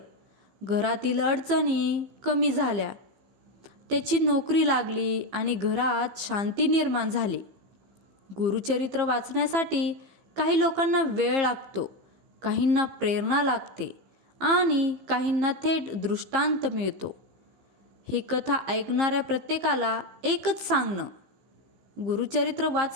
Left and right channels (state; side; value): late; left; 15 ms